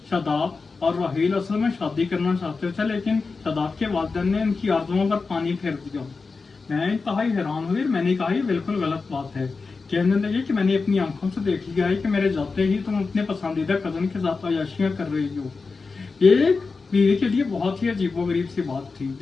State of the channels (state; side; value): quieter; right; 4.3 dB